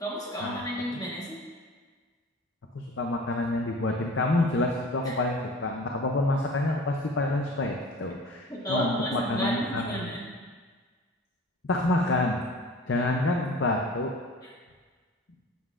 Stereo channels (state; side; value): normal; both; correlation 0.42